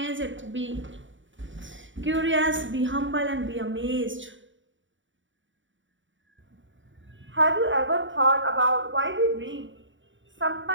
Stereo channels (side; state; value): left; late; 0.55 ms